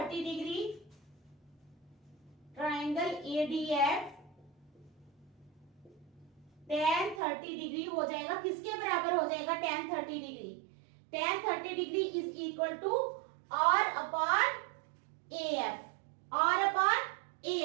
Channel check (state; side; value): drops out; left; at 7.2 s